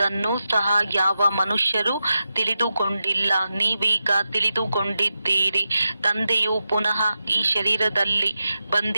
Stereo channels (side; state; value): both; inverted; correlation -0.90